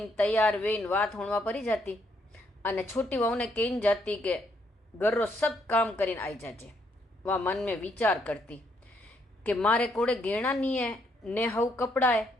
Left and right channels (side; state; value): both; normal; correlation 0.73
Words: तैयार वेन वात होणवा परी जाती अने छोटी वहू ने कहीने जाती के घर रो सब काम करीने आई जाजे। वह मन में विचार करती कि मारे कोड़े घेणा नहीं है ने हव कपड़ा है,